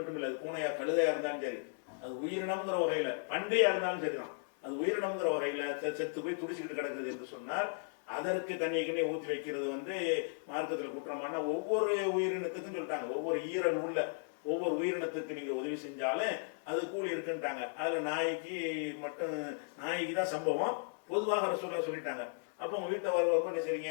இல்லை, அது பூனையா கழுதையா இருந்தாலும் சரி, அது உயிரினம்ங்கிற வகையில, பண்டையா இருந்தாலும் சரிதான், அது உயிரினம்ங்கிற வகையில செத்து போய் துடிச்சுக்கிட்டு கிடக்குது என்று சொன்னால் அதற்கு தண்ணியை ஊற்றி வைக்கிறது வந்து மார்க்கத்தில் குற்றமான. ஒவ்வொரு உயிரினத்துக்கும் சொல்லிட்டாங்க, ஒவ்வொரு ஈரல் உள்ள ஒவ்வொரு உயிரினத்துக்கு நீங்க உதவி செஞ்சாலும் அது கூலி இருக்குன்ட்டாங்க. அதுல நாய்க்கு மட்டும், நாய்க்கு தான் சம்பவம், பொதுவாக ரசூலுல்லாஹ் சொல்லிட்டாங்க. அப்போ உங்க வீட்டை வரவங்க என்ன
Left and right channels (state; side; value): silent; right; digital silence